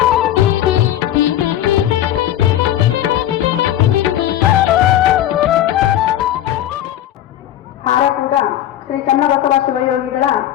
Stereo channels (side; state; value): right; quieter; 12.2 dB